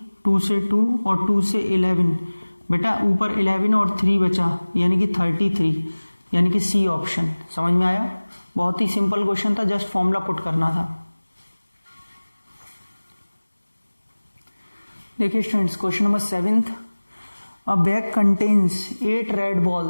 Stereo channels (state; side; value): inverted; both; correlation -1.00